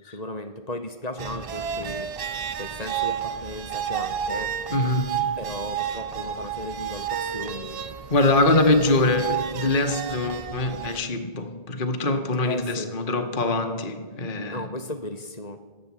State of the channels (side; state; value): right; late; 1.8 ms